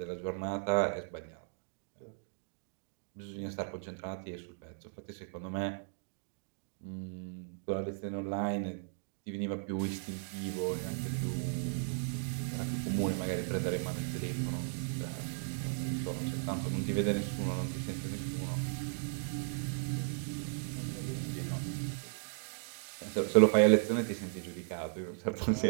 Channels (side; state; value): left; silent; digital silence